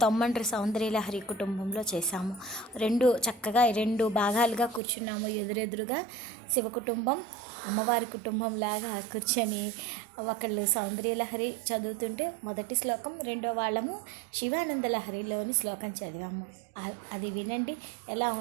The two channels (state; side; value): drops out; left; at 4.8 s